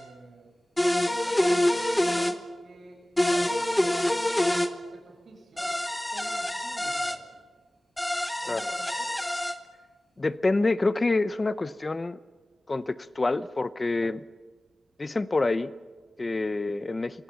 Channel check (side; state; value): both; normal; correlation 0.98